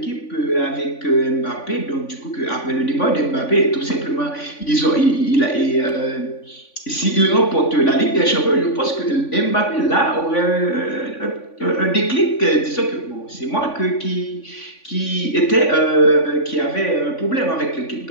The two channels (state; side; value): late; right; 3.5 ms